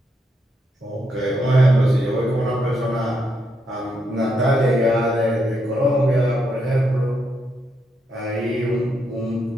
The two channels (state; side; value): normal; both; correlation 0.79